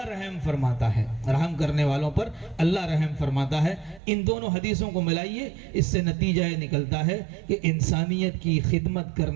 رحم فرماتا ہے, رحم کرنے والوں پر اللہ رحم فرماتا ہے. ان دونوں حدیثوں کو ملائیے, اس سے نتیجہ یہ نکلتا ہے کہ انسانیت کی خدمت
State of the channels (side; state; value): left; drops out; at 4.0 s